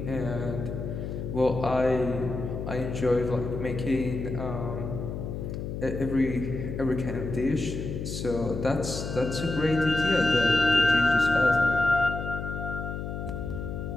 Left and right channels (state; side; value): noise; left; hum, 6 dB below the sound